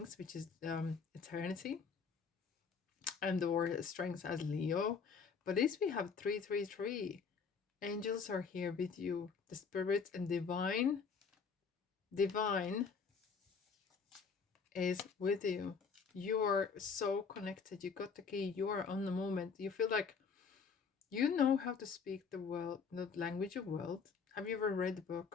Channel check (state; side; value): quieter; right; 5.6 dB